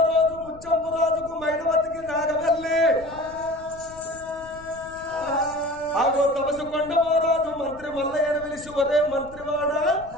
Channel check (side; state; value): left; noise; rumble, 19 dB below the sound